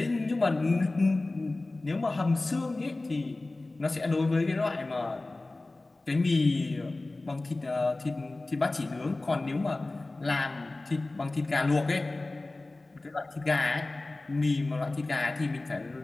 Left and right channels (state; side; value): quieter; right; 3.0 dB